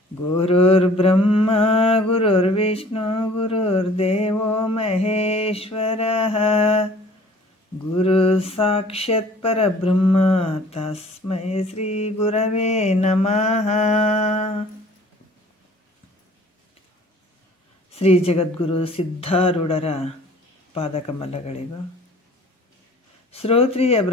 ಗುರುರ್ಬ್ರಹ್ಮ ಗುರುರ್ವಿಷ್ಣು ಗುರುರ್ದೇವೋ ಮಹೇಶ್ವರಃ ಗುರು ಸಾಕ್ಷಾತ್ ಪರಬ್ರಹ್ಮ ತಸ್ಮೈ ಶ್ರೀ ಗುರವೇ ನಮಃ. ಶ್ರೀ ಜಗದ್ಗುರು ಸಿದ್ಧಾರೂಢರ ಪಾದಕಮಲಗಳಿಗೂ, ಶ್ರೋತ್ರಿಯ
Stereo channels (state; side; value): normal; both; correlation 0.51